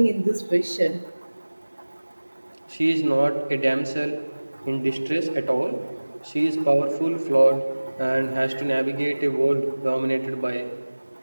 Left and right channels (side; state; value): both; inverted; correlation -1.00